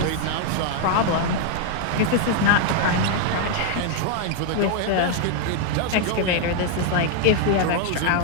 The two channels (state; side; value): different; both; correlation 0.00